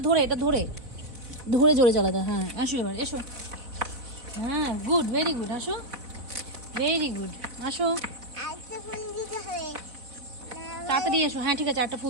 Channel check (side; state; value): left; late; 3.9 ms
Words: ধরে এটা ধরে ধরে জোরে চালাতে, হ্যাঁ আসো এবার এসো, হ্যাঁ গুড, ভেরি গুড, আসো ভেরি গুড, আসো তাড়াতাড়ি এসো, হ্যাঁ ঠিক আছে একটা